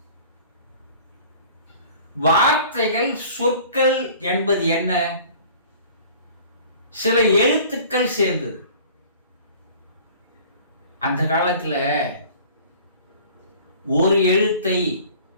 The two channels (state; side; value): inverted; both; correlation -0.47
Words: வார்த்தைகள், சொற்கள் என்பது என்ன? சில எழுத்துக்கள் சேர்ந்தது. அந்த காலத்துல ஒரு எழுத்தை